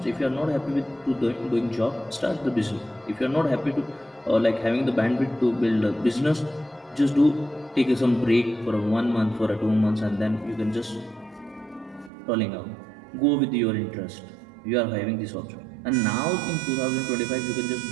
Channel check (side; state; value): left; drops out; at 12.1 s